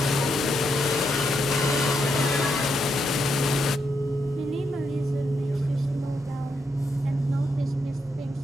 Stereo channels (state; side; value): normal; both; correlation 0.81